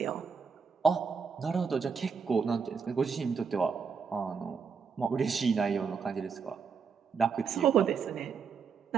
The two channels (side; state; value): left; quieter; 5.8 dB